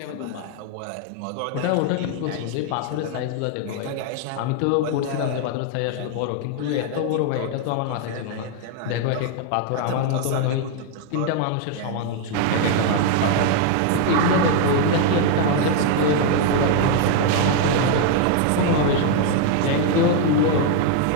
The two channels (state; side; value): different; both; correlation 0.00